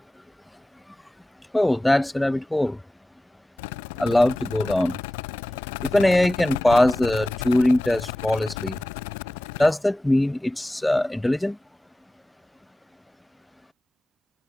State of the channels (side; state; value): both; normal; correlation 0.96